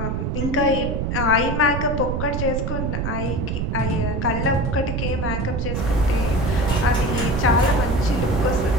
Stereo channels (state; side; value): noise; right; rumble, 1 dB below the sound